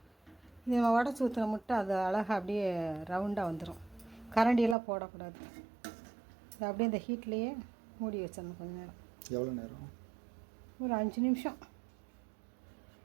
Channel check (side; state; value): left; drops out; at 4.8 s